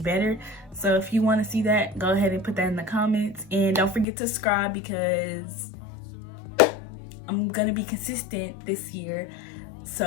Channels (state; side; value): drops out; right; at 4.0 s